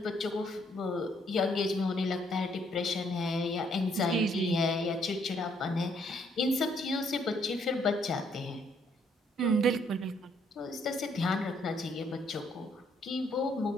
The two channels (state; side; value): normal; both; correlation 0.68